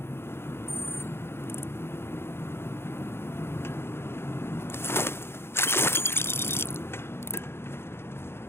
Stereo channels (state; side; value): late; right; 0.12 ms